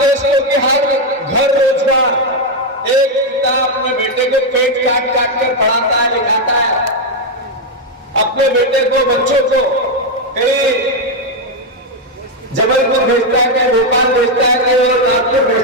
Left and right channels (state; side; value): normal; both; correlation 0.03